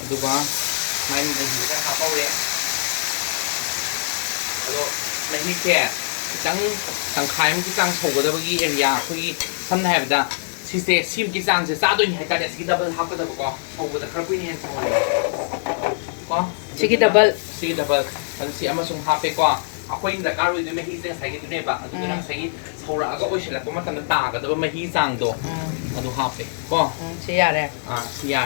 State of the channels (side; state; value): right; silent; 59 dB below the other